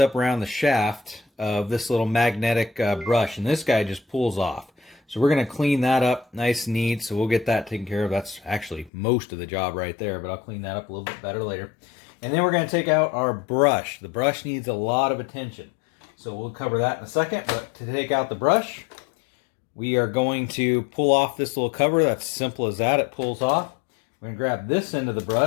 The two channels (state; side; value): drops out; right; at 8.9 s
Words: around the shaft of this little magnetic brush. And this guy just pulls off. So we're going to clean that up nice and neat, so we'll get that taken care of. That's actually most of the job right there, but I'll clean that up a little bit better later. And then we're going to take out our brush. The brush needs a lot of attention, so we'll cover that in a second. But to take out the brush, we are going to pull off this little cover. That's simple as that. It pulls off. We're going to grab this end of the